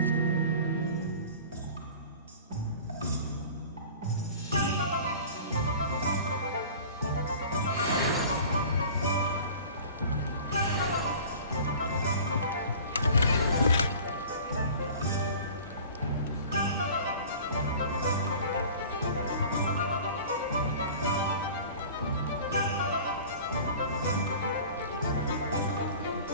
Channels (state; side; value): inverted; both; correlation -0.42